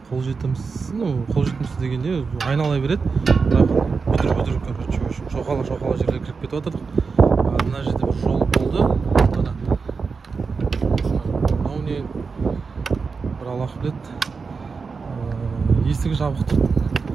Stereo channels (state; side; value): quieter; left; 4.9 dB